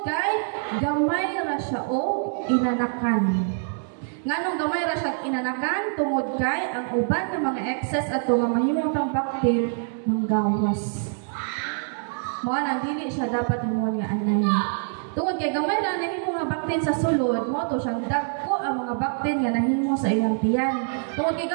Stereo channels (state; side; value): silent; left; 62 dB below the other